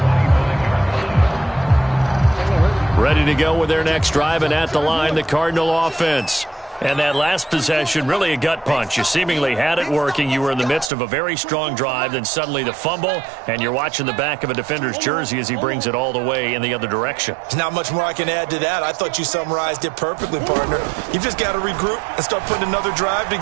Ready to go with their next drive, and at the line, the Cardinal offense. And that last possession, really a gut punch. You seemingly had it working. You were in the midst of a very strong drive, then suddenly the fumble, and you're watching the back of a defender's jersey as he brings it all the way in the other direction. There's not much more I can add to that. I thought you summarized it perfectly, partner. You've just got to regroup and start putting another drive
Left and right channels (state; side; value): drops out; left; at 10.9 s